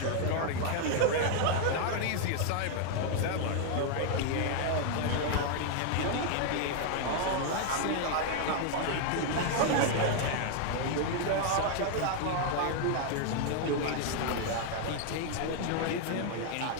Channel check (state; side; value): different; both; correlation 0.00